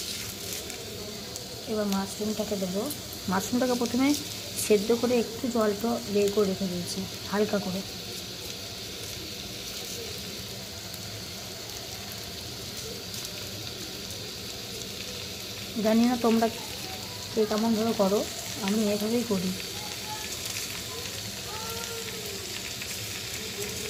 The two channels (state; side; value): identical; both; correlation 1.00